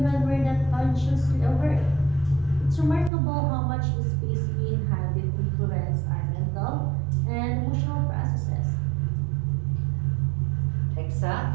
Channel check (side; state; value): left; drops out; at 3.1 s